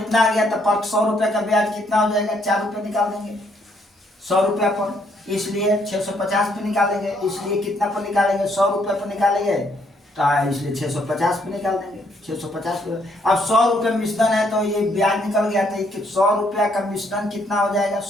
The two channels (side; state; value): both; normal; correlation 0.70